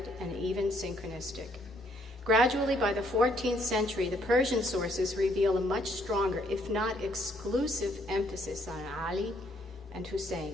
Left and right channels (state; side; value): normal; both; correlation 0.68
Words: and even synchronistic. Gradually, by the 14th century, the Persian sources reveal a much stronger, if not exclusive, emphasis on Ali and